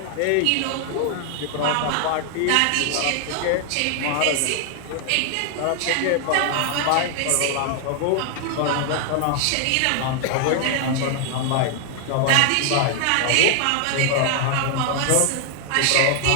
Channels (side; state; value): both; different; correlation 0.00